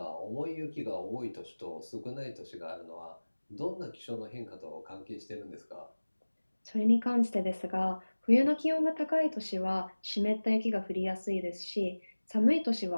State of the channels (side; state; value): both; inverted; correlation -1.00